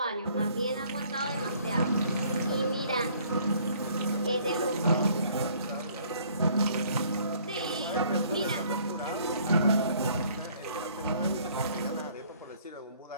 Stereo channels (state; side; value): inverted; both; correlation -0.59